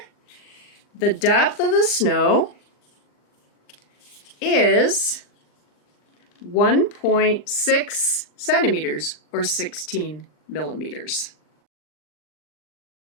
the depth of the snow is 1.6 centimeters, or 16 millimeters.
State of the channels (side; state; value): right; late; 40 ms